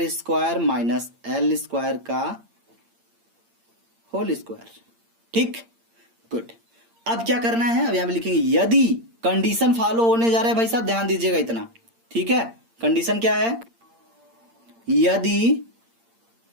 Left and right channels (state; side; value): late; left; 8.7 ms